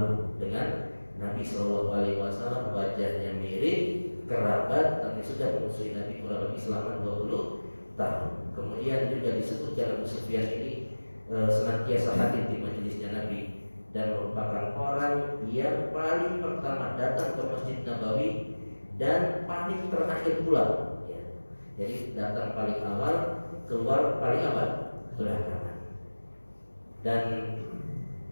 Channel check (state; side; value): inverted; both; correlation -1.00